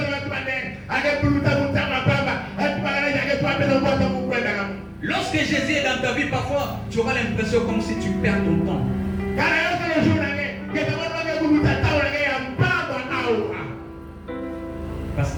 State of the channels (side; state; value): both; identical; correlation 1.00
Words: Lorsque Jésus est dans ta vie, parfois, tu auras l'impression comme si tu perds ton temps. Parce